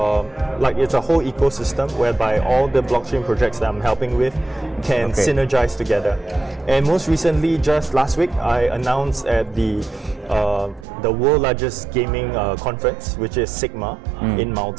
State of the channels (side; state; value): left; drops out; at 10.9 s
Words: a whole ecosystem whereby all the blockchain projects that I'm helping with can synergize together. And most recently, just last week, I announced at the world largest gaming conference, which is Sigma in